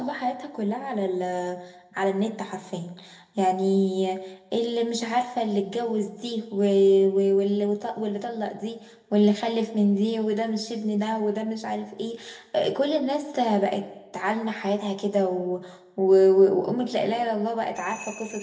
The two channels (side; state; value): both; identical; correlation 1.00